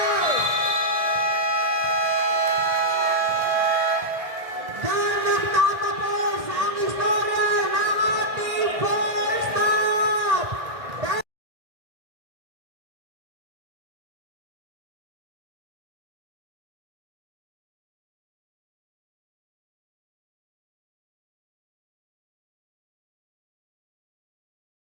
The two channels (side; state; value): left; late; 1.6 ms